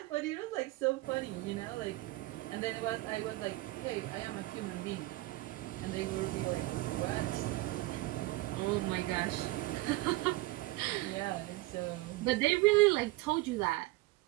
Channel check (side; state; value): left; quieter; 20.0 dB